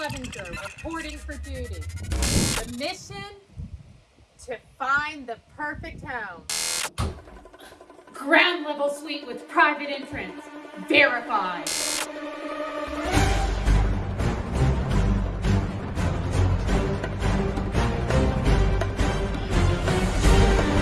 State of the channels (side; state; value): both; identical; correlation 1.00